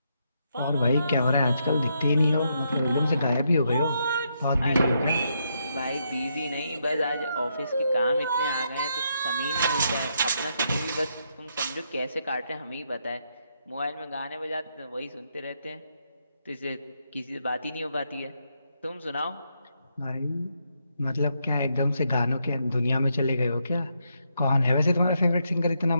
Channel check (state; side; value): inverted; both; correlation -0.78